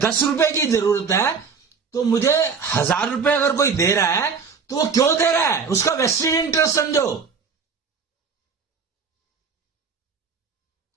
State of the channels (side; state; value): left; quieter; 5.6 dB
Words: रुपए की जरूरत है तो मुझे 1,000 रुपए अगर कोई दे रहा है तो वो क्यों दे रहा है? उसका वेस्टेड इंटरेस्ट समझो।